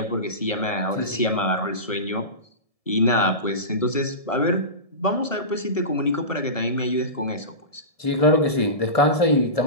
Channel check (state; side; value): late; right; 1.7 ms